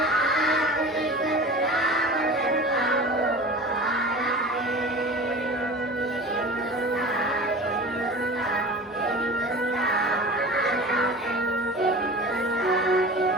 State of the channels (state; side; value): normal; both; correlation 0.37